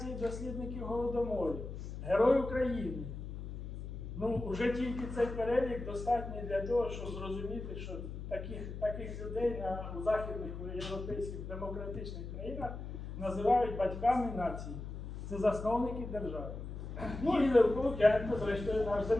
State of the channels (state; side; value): noise; left; hum, 8 dB below the sound